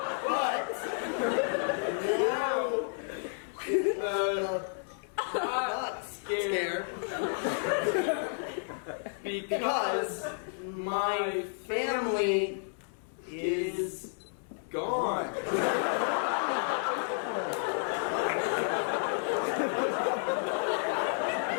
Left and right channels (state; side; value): silent; right; 56 dB below the other